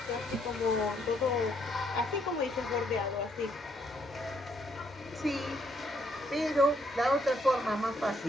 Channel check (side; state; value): both; normal; correlation 0.71